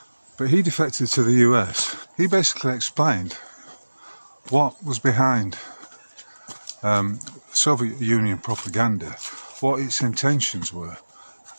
But he defected to the US. He basically explained what was behind Soviet Union propaganda, what its intentions were,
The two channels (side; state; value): both; inverted; correlation -1.00